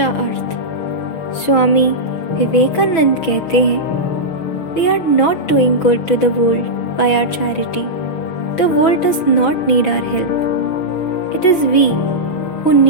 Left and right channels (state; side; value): late; right; 6.1 ms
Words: अर्थ। स्वामी विवेकानंद कहते हैं, we are not doing good to the world by our charity. The world does not need our help, it is we who